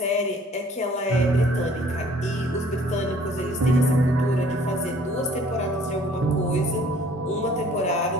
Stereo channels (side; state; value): both; normal; correlation 0.56